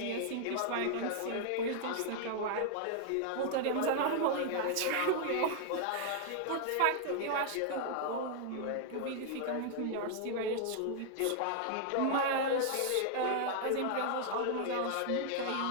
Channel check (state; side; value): different; both; correlation 0.00